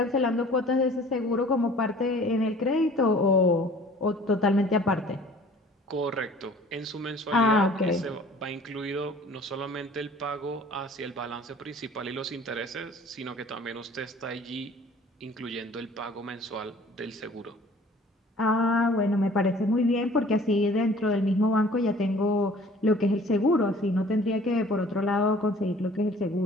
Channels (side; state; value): both; normal; correlation 0.51